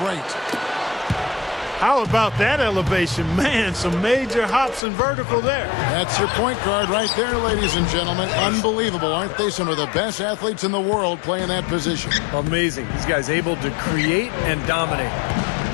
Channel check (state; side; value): drops out; right; at 4.8 s